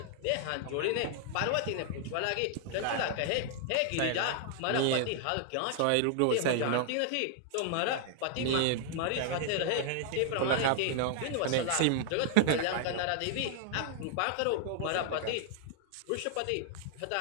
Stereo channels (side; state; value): both; different; correlation 0.00